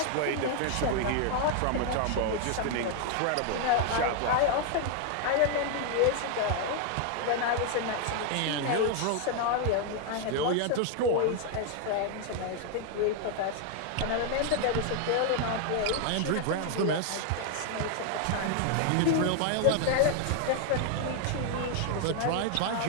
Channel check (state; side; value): different; both; correlation 0.00